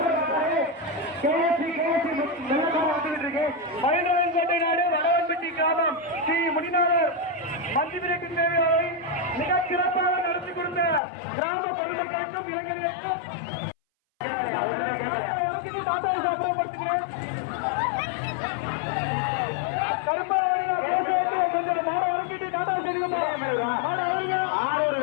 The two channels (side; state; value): right; drops out; at 11.0 s